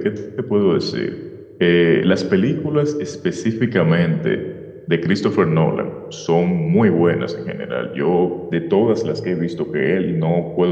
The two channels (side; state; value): both; identical; correlation 1.00